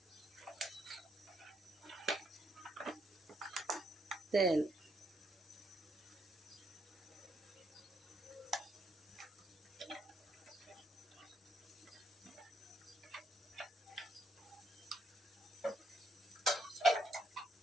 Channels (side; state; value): both; normal; correlation 0.75